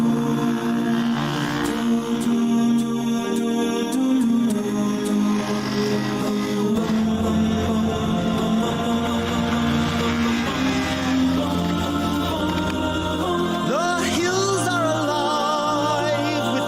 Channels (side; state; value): both; identical; correlation 1.00